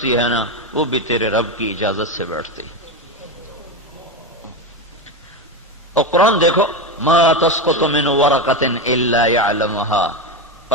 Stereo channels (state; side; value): normal; both; correlation 0.15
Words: ہے نا، وہ بھی تیرے رب کی اجازت سے بیٹھتی۔ اور قرآن دیکھو، ما تسقط من ورقۃ الا يعلمها،